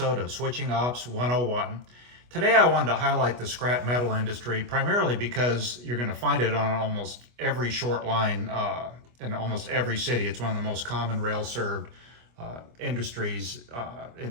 of Switching Ops 101. Today I wanted to highlight the scrap metal industry primarily because you're going to find it on almost every short line in almost every city. It's one of the most common rail-served industries in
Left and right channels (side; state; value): left; late; 25 ms